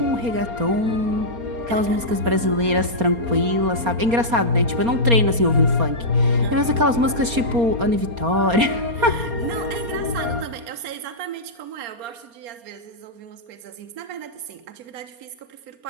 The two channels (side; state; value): left; late; 4.3 ms